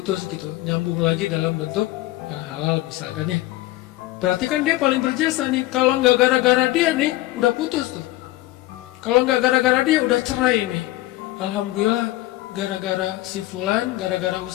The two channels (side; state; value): right; quieter; 17.4 dB